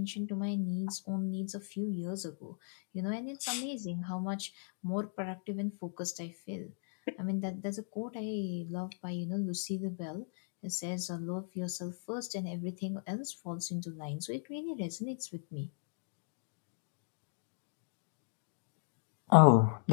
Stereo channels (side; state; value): right; silent; digital silence